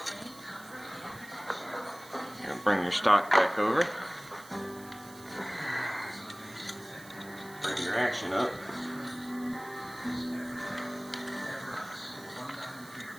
And bring your stock back over. Bring your action up.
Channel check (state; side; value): noise; right; hiss, 19 dB below the sound